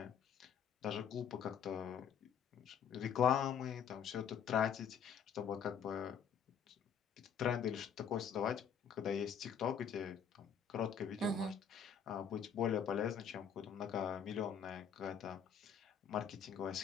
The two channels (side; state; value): right; quieter; 7.4 dB